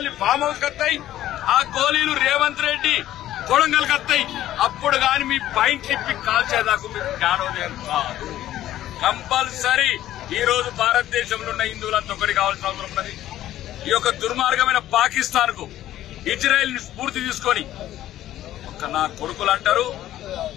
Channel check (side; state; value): right; quieter; 13.3 dB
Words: ఫామ్ హౌస్ కత్తాయి, ఆ గోళీలు రేవంత్ రెడ్డి కొడంగల్ కత్తాయి. అప్పుడు గాని మీ పైంట్ తిప్పి కాల్చేదాకా మీకు జ్ఞానోదయం కాదు. కంపల్సరీ ఈ రోజు భారతదేశంలో ఉన్న హిందువులంతా ఒకటి కావాల్సిన అవసరం ఉన్నది. ఈ యొక్క దుర్మార్గమైన పాకిస్తాన్ కు, ఇజ్రాయెల్ ని స్ఫూర్తి తీసుకొని ఒక నా కొడుకులు అంటారు